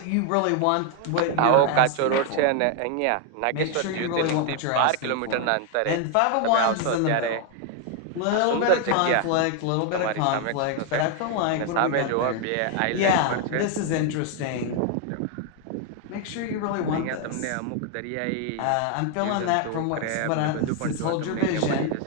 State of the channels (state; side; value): different; both; correlation 0.00